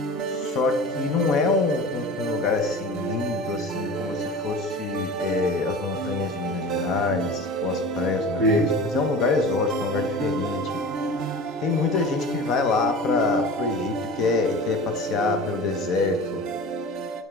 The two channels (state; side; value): normal; both; correlation 0.36